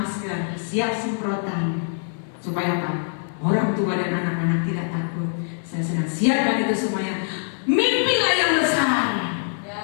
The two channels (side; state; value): right; silent; 63 dB below the other